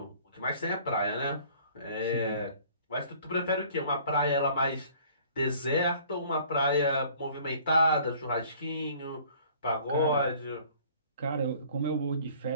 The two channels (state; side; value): inverted; both; correlation -0.53